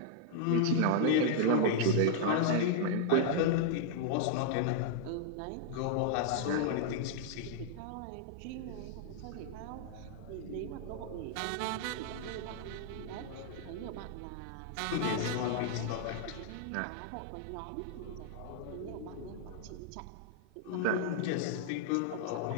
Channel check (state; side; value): different; both; correlation -0.01